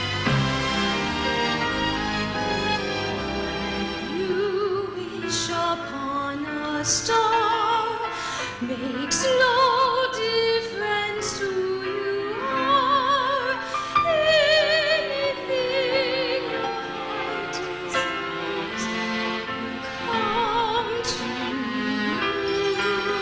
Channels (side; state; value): both; identical; correlation 1.00